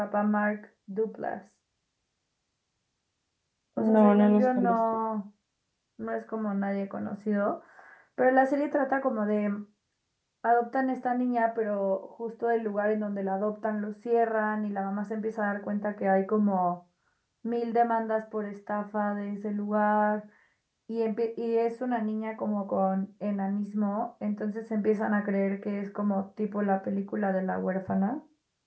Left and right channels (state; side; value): identical; both; correlation 1.00